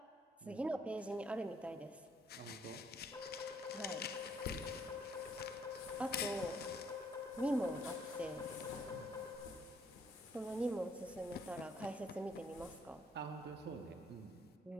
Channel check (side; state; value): both; normal; correlation 0.67